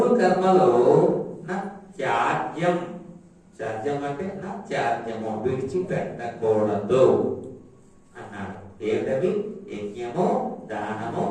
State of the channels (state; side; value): identical; both; correlation 1.00